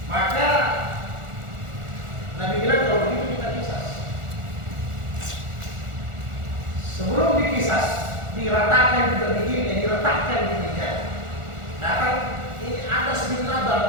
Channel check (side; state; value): left; late; 1.4 ms